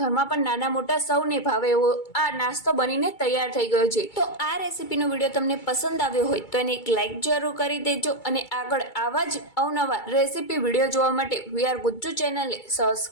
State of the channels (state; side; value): late; right; 2.3 ms